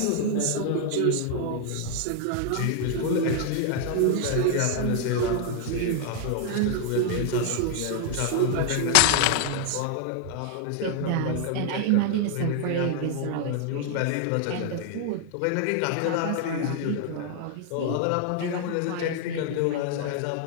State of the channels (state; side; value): different; both; correlation 0.00